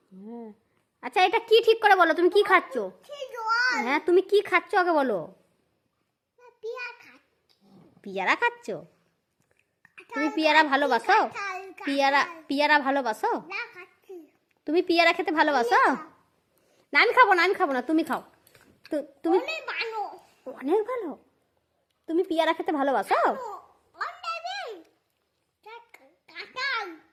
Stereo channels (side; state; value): both; identical; correlation 1.00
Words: হ্যাঁ। আচ্ছা, এটা কি ঠিক করে বলো, তুমি কি খাচ্ছ? হ্যাঁ, তুমি কি খাচ্ছ আগে বলো। পিয়ারা খাচ্ছ? তুমি পিয়ারা ভালোবাসো? পিয়ারা ভালোবাসো? তুমি পিয়ারা খেতে ভালোবাসো? না, আমি খাবো না, আমি খাবো না, তুমি খাও। তুমি অনেক ভালো। তুমি পিয়ারা খেতে ভালোবাসো?